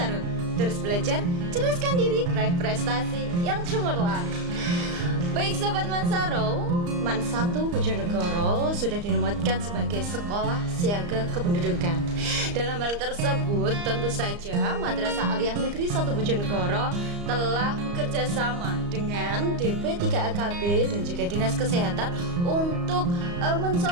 Terus belajar, ceraskan diri, raih prestasi yang cemerlang. Baik Sobat Mansaru, MAN 1 Bojonegoro sudah dinobatkan sebagai sekolah siaga kependudukan. Dalam hal tersebut, tentu saja Madrasah Aliyah Negeri 1 Bojonegoro telah bekerja sama dengan DP 3AKB dan juga Dinas Kesehatan untuk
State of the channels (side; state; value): left; late; 34 ms